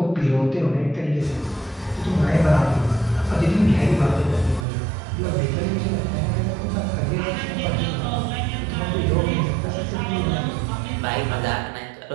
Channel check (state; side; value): drops out; left; at 4.7 s